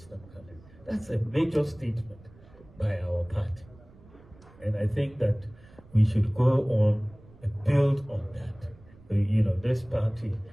candidate. That's a major statement by our party. And I think that we should go on and build on that. This party,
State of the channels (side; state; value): right; noise; rumble, 24 dB below the sound